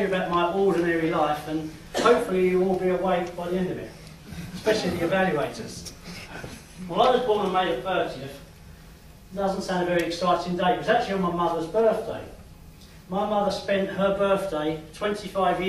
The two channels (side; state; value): both; identical; correlation 1.00